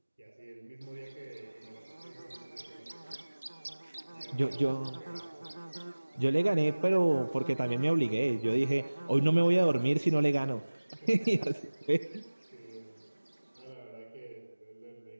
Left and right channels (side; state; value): both; inverted; correlation -1.00